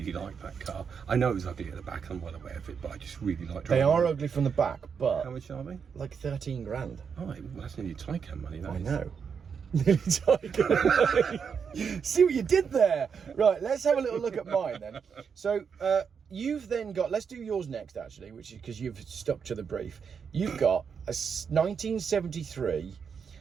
liked that car. I know it was ugly at the back, I'm well aware of it, but I just really liked driving. They are ugly from the back, but... How much are they? Like 13 grand. Oh, well, that's nearly Taycan money, that I is. know. Nearly Taycan money. See what you did there? Right, let's have a little look at mine then. So, you've then got... Let's do yours next, actually, which is because you've stuck to the brief. You've got a 1973...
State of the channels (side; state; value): left; quieter; 6.5 dB